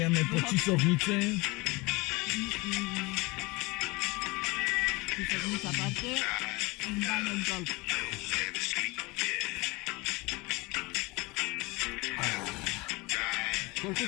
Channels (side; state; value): right; quieter; 24.4 dB